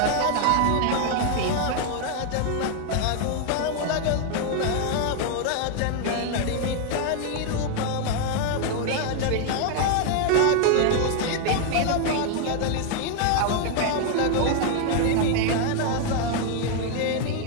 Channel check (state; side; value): different; both; correlation 0.00